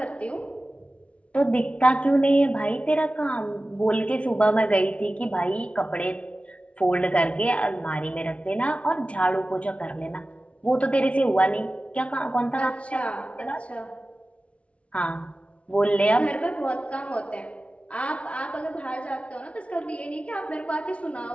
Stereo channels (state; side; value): late; right; 0.062 ms